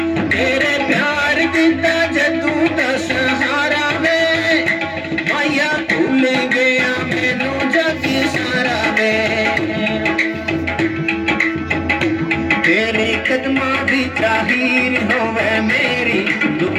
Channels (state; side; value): identical; both; correlation 1.00